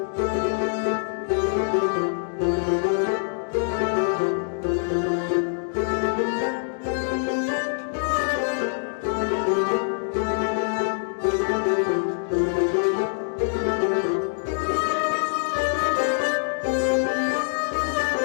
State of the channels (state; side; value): silent; right; digital silence